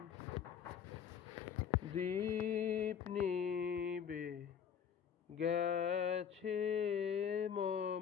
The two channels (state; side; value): quieter; right; 7.9 dB